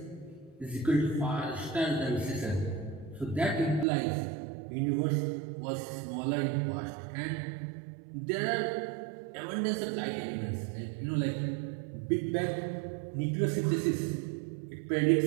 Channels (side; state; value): left; drops out; at 3.9 s